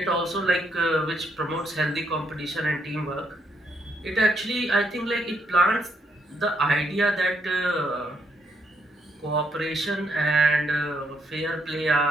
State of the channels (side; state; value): both; normal; correlation 0.75